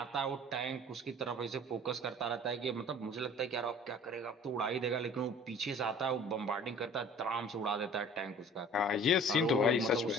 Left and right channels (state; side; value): normal; both; correlation 0.47